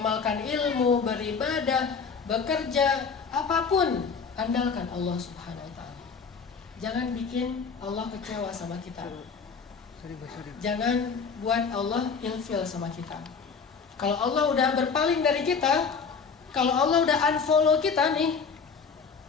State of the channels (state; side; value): quieter; right; 5.5 dB